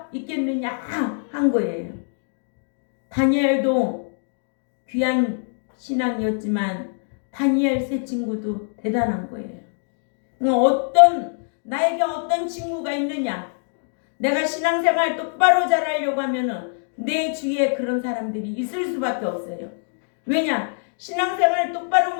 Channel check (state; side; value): silent; right; digital silence